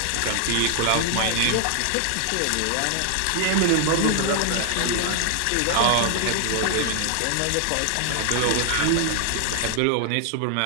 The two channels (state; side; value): different; both; correlation 0.00